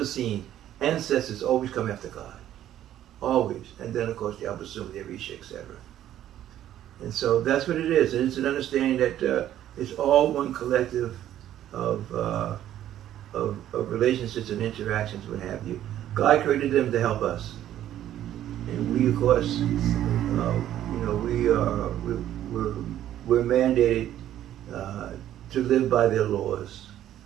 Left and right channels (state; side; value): quieter; left; 11.9 dB